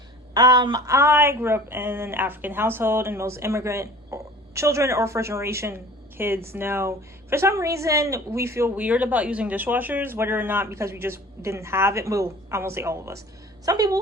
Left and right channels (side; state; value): both; normal; correlation 0.44